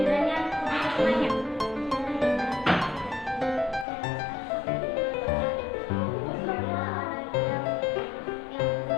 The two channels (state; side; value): drops out; right; at 3.9 s